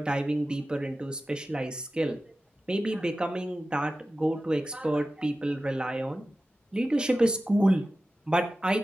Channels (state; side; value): normal; both; correlation 0.94